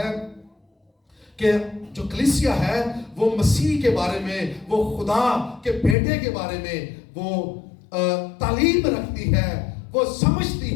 کہ جو کلیسیا ہے وہ مسیح کے بارے میں، وہ خدا کے بیٹے کے بارے میں وہ تعلیم رکھتی ہے، وہ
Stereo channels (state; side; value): drops out; right; at 6.0 s